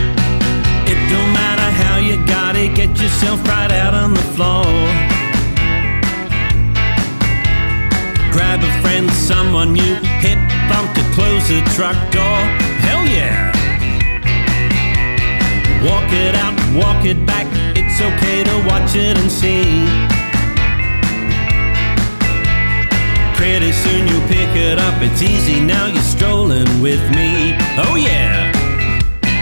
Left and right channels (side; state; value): both; inverted; correlation -1.00